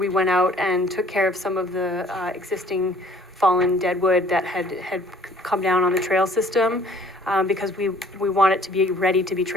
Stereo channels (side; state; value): both; normal; correlation 0.55